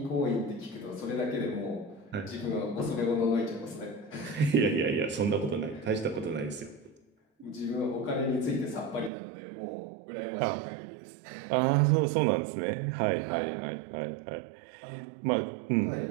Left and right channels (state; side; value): drops out; left; at 9.1 s